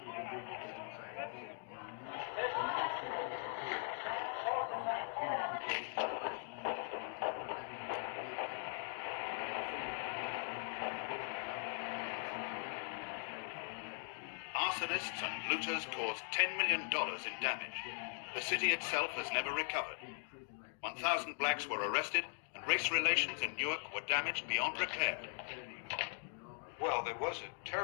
Arsonists and looters caused $10 million in damage. The city itself has never recovered. 1,000 blacks were arrested, and race relations in Newark were damaged beyond repair. Well, there was a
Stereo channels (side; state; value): right; silent; 51 dB below the other